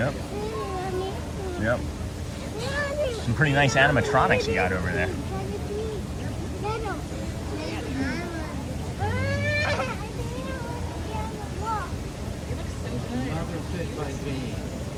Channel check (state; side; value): identical; both; correlation 1.00